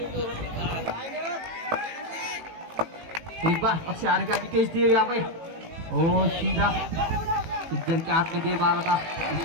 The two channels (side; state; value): left; late; 18 ms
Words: एक बार अक्षय आरेकर निकेश देव यहाँ पे सीधा इधर के हाथ में दे मारा था।